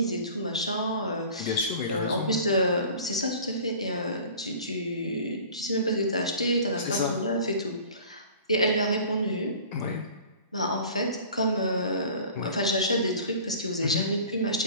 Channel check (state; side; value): inverted; both; correlation -0.44